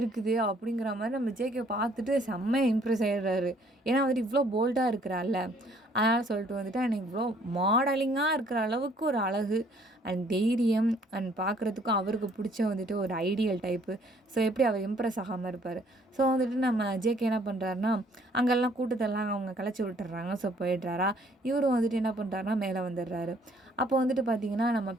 அப்படிங்கிற மாரி நம்ம ஜேகே பார்த்துட்டு செம்ம இம்ப்ரெஸ் ஆயிடுறாரு. ஏன்னா வந்துட்டு இவ்ளோ போல்டா இருக்கிறாள்ல. அதனால சொல்லிட்டு வந்துட்டு எனக்கு இவ்ளோ மாடலிங்கா இருக்கிற அளவுக்கு ஒரு அழகு அண்ட் தைரியம் அண்ட் பார்க்குறதுக்கும் அவருக்கு பிடிச்ச வந்துட்டு ஒரு ஐடியல் டைப்பு. ஸோ எப்படி அவர் இம்ப்ரெஸ் ஆகாம இருப்பாரு. ஸோ வந்துட்டு நம்ம ஜேகே என்ன பண்ணுறாருன்னா, அங்கெல்லாம் கூட்டத்தெல்லாம் அவங்க கலைச்சி விட்டுர்றாங்க. ஸோ போயிடுறாரா. இவரும் வந்துட்டு என்ன பண்ணுறாருன்னா மேலே வந்துடுறாரு. அப்போ வந்துட்டு பார்த்தீங்கன்னா, நம்ம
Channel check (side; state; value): both; normal; correlation 0.61